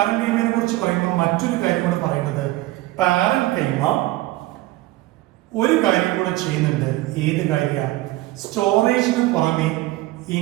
കുറിച്ച് പറയുമ്പോൾ മറ്റൊരു കാര്യം കൂടെ പറയുന്നത്, പാരൻകൈമ ഒരു കാര്യം കൂടെ ചെയ്യുന്നുണ്ട്. ഏത് കാര്യമാണ്? സ്റ്റോറേജിന് പുറമെ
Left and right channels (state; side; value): quieter; left; 18.0 dB